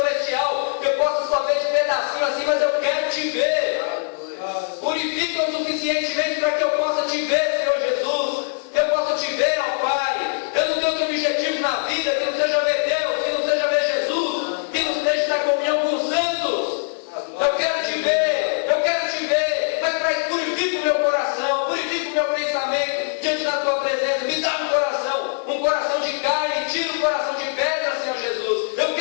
que eu possa só ver de pedacinho assim, mas eu quero te ver. Purifica-o suficientemente para que eu possa te ver, Senhor Jesus. Eu possa te ver, ó Pai. Eu não tenho outro objetivo na vida que não seja ver Deus, que não seja ver Jesus, que não seja na comunhão com os santos. Eu quero te ver, mas para isso purifica o meu coração, purifica o meu pensamento diante da tua presença. Me dá um coração de carne, tira o coração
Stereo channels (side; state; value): right; silent; digital silence